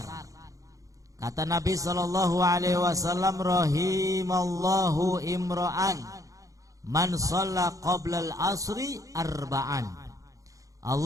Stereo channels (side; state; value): left; late; 0.16 ms